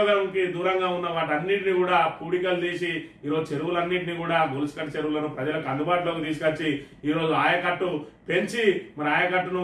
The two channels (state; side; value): identical; both; correlation 1.00